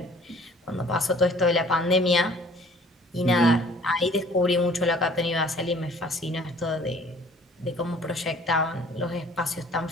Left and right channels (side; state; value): both; normal; correlation 0.53